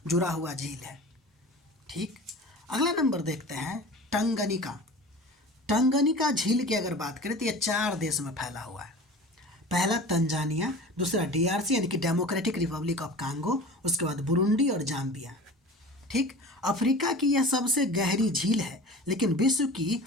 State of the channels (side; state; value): both; normal; correlation 0.38